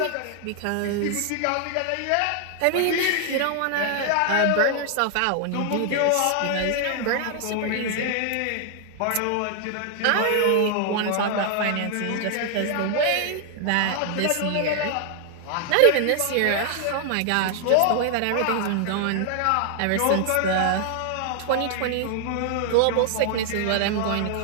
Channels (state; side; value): different; both; correlation 0.00